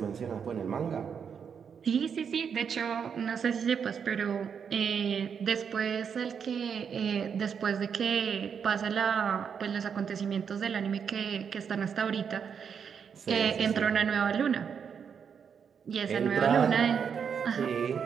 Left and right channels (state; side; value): quieter; left; 7.0 dB